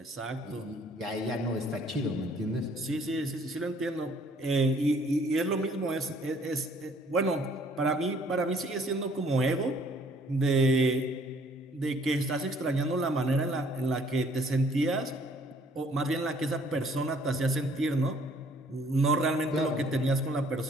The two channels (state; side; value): normal; both; correlation 0.59